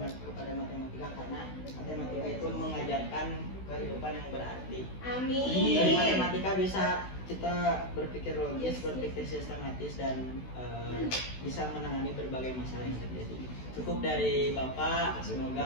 kepada matematika karena matematika itu mengajarkan kehidupan yang berarti. Amin. Dari matematika bisa kita berpikir logis, berpikir sistematis dan bisa menangani berbagai masalah yang terjadi. Cukup dari Bapak,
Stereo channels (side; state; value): right; late; 16 ms